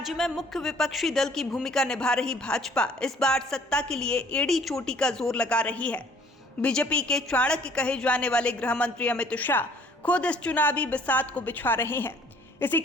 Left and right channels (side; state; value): both; normal; correlation 0.57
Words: में मुख्य विपक्षी दल की भूमिका निभा रही भाजपा इस बार सत्ता के लिए एड़ी चोटी का जोर लगा रही है। बीजेपी के चाणक्य कहे जाने वाले गृह मंत्री अमित शाह खुद इस चुनावी बिसात को बिछा रहे हैं। इसी